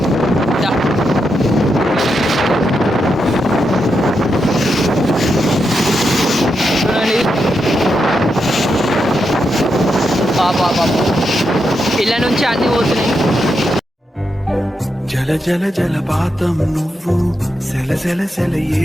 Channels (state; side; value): normal; both; correlation 0.85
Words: ఇళ్ళ నుంచి అన్ని పోతున్నాయి. జల జల జలపాతం నువ్వు, సెల సెల సెల